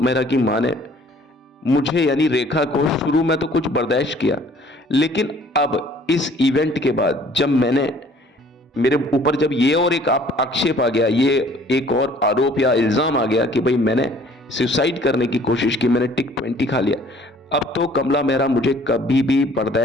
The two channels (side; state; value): both; normal; correlation 0.55